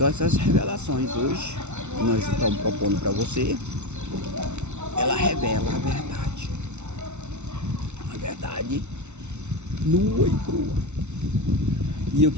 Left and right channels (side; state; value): left; late; 0.82 ms